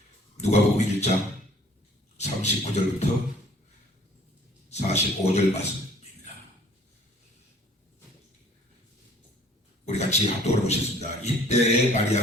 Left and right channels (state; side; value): normal; both; correlation 0.54